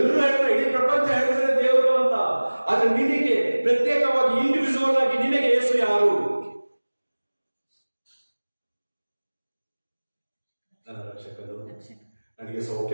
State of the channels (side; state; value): both; inverted; correlation -1.00